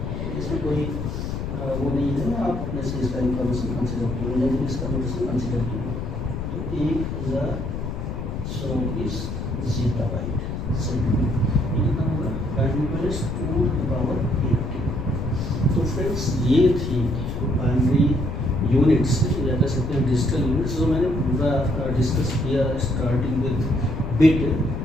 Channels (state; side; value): noise; left; rumble, 4 dB below the sound